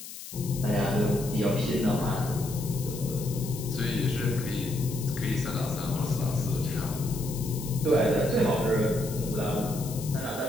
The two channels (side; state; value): left; noise; hiss, 12 dB below the sound